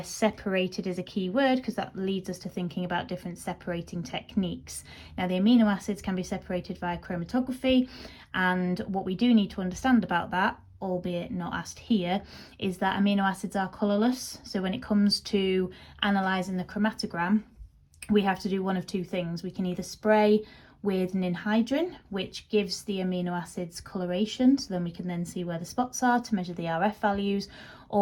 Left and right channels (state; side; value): identical; both; correlation 1.00